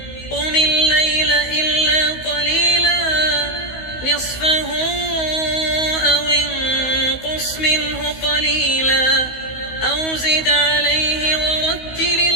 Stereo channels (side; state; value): right; late; 16 ms